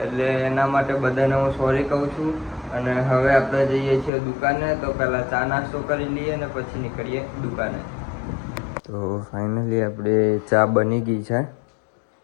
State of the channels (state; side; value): drops out; right; at 4.1 s